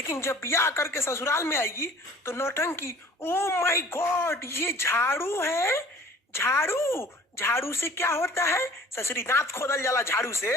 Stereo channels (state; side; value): normal; both; correlation 0.49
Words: जब ब्याह करके ससुराल में आएगी तो नौटंकी। ओ माय गॉड, ये झाड़ू है, झाड़ू, झाड़ू से क्या होता है? ससुरी दांत खोदल जाला झाड़ू से,